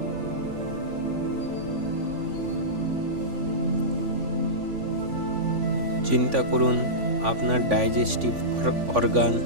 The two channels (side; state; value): left; late; 3.5 ms